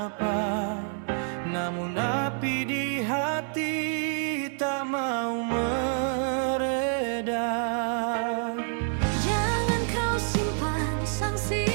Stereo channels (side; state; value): left; silent; 60 dB below the other